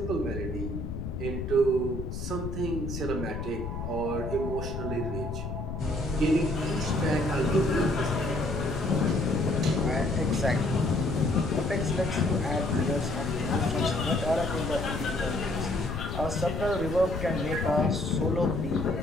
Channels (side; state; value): left; noise; rumble, 5 dB below the sound